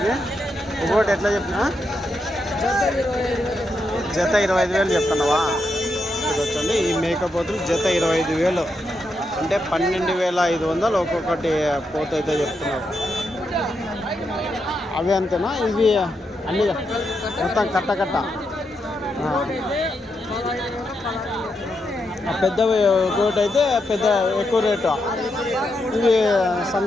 ఒకటి ఎట్లా చెప్పినా? జత 25,000 చెప్తున్నావా? వచ్చండి ఈ మేకపోతులు జత 25,000 అంటే 12,500 ఒక్కొక్కటి పోతు అయితే చెప్తున్నారు. అవి అంతేనా? ఇవి అన్ని మొత్తం కట్ట పెద్దవి ఒకటి అయితే పెద్ద ఎక్కువ రేటు. ఇవి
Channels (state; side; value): normal; both; correlation 0.83